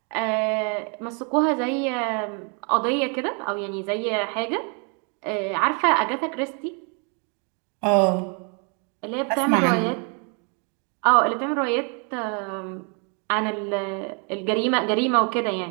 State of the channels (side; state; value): left; quieter; 37.2 dB